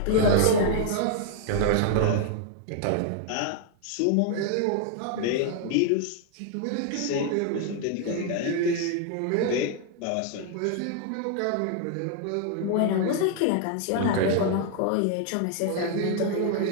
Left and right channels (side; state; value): both; different; correlation 0.00